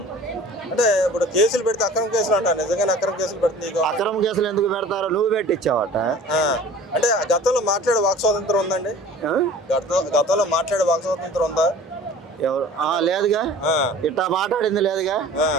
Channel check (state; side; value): normal; both; correlation 0.44